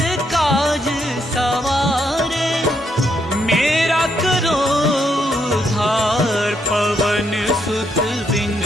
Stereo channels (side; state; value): both; normal; correlation 0.76